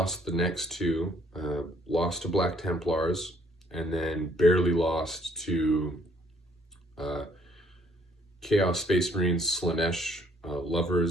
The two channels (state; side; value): normal; both; correlation 0.64